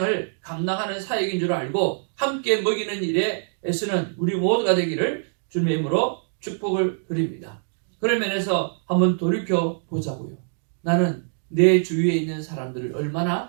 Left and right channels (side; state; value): left; silent; digital silence